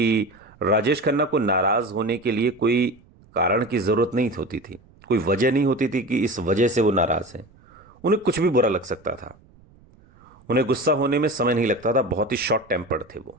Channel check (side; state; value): right; noise; rumble, 28 dB below the sound